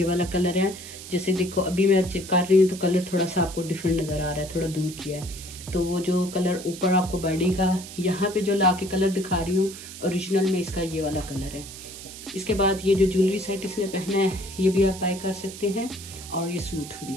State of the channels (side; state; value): right; noise; hiss, 13 dB below the sound